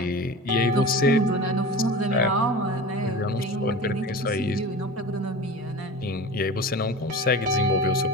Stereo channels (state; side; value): normal; both; correlation 0.33